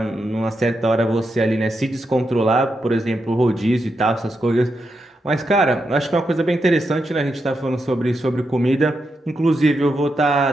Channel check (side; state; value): both; normal; correlation 0.85